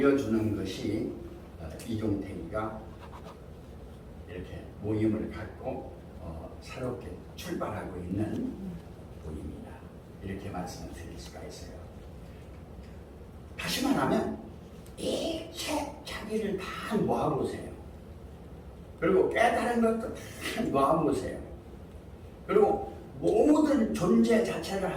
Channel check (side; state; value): both; identical; correlation 1.00